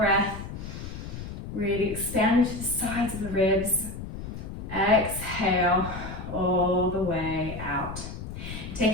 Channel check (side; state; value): left; noise; rumble, 9 dB below the sound